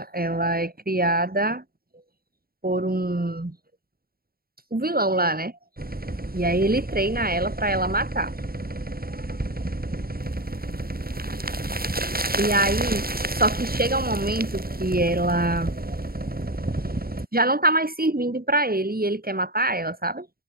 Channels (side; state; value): left; late; 0.44 ms